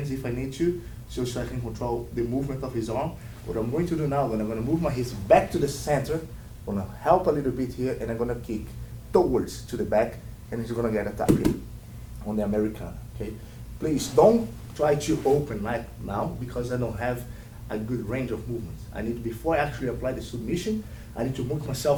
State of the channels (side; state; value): both; identical; correlation 1.00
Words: if I need to, so I can control the movement of his arm. What I'm going to do now, I'm gonna move my hips back to the center, I'm gonna help a little bit here, and I'm gonna kick towards to the back, and he's gonna get attacked here on the Americana, okay? Please don't try to open right now because I don't have a good range of movements. I need, before I actually apply the submission, I need to move